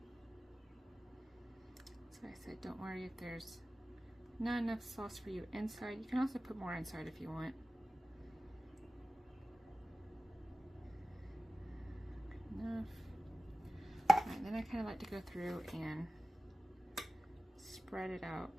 So I said, don't worry if there's not enough sauce for you inside. You can also put more inside if you want. Good enough. Alright, then I kind of like to go through and spread it out.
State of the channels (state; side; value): normal; both; correlation 0.95